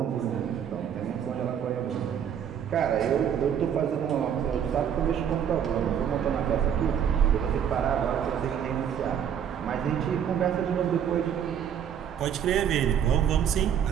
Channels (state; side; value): quieter; left; 8.7 dB